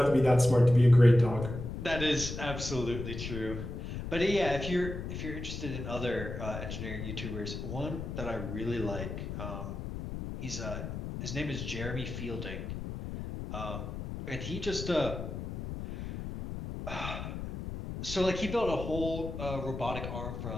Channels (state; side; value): noise; left; rumble, 7 dB below the sound